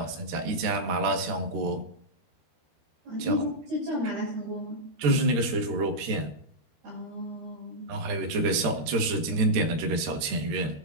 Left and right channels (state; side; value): late; left; 13 ms